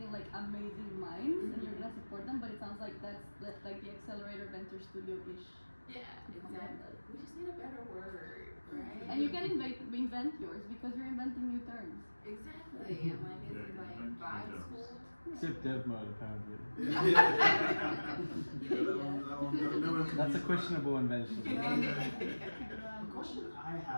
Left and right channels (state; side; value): inverted; both; correlation -1.00